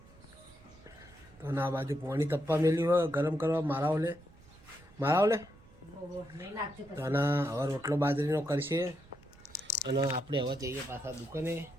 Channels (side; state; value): right; noise; rumble, 24 dB below the sound